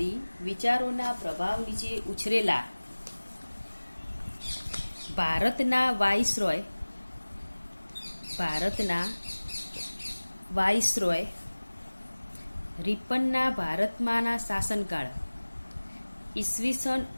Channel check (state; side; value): inverted; both; correlation -1.00